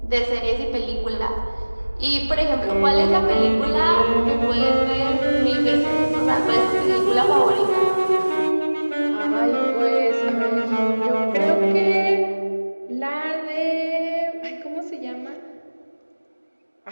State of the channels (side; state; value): both; inverted; correlation -1.00